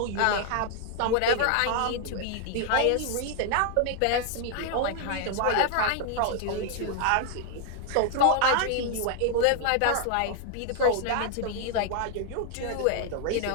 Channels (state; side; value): different; both; correlation 0.00